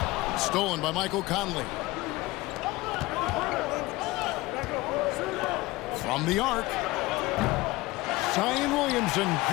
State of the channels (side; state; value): right; quieter; 20.4 dB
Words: Stolen by Michael Conley. From the arc. Zion Williamson